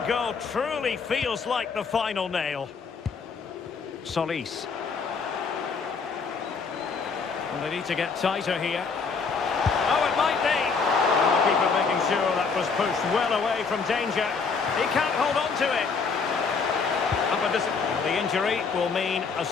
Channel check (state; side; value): quieter; right; 5.1 dB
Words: goal truly feels like the final nail. Solis. And they need to get tighter here. Oh, it might be. And the keeper making sure that was pushed well away from danger. He can't hold on to it. The injury will mean a